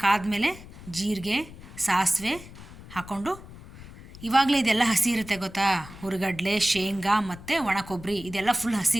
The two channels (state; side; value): noise; left; rumble, 17 dB below the sound